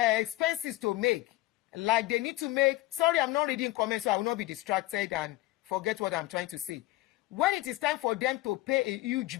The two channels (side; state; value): right; quieter; 18.1 dB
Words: to make, like they need to make, sorry, I'm not reading comments, so I will not be distracted and forget what I'm trying to say. When it is time for them to pay a huge